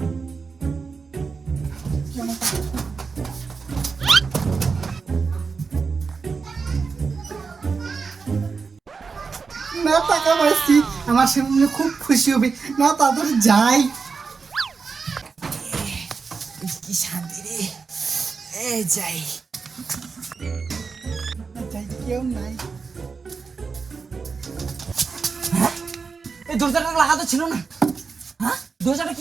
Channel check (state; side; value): quieter; left; 5.0 dB